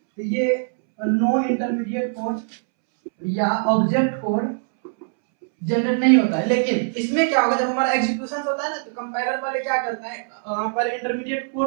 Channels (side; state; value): left; silent; 64 dB below the other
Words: तो ये नो इंटरमीडिएट कोड या ऑब्जेक्ट कोड जनरेट नहीं होता है। लेकिन इसमें क्या होगा, जब हमारा एग्जीक्यूशन होता है ना, तो कंपाइलर पहले क्या करता है, पहले इंटरमीडिएट